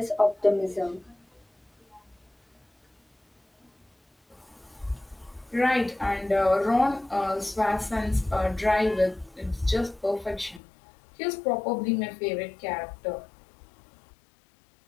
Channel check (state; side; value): drops out; right; at 10.6 s